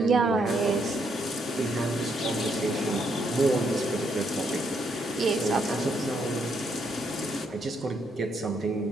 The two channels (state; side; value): normal; both; correlation 0.75